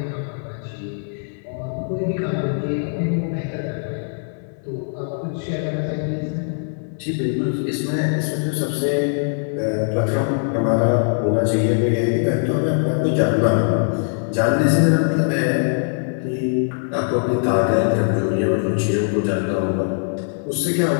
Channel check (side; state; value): right; silent; 65 dB below the other